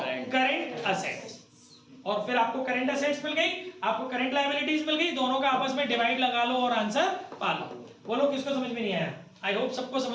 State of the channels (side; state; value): both; identical; correlation 1.00